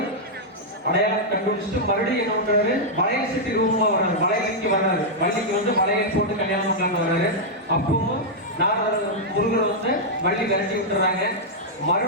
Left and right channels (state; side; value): normal; both; correlation -0.06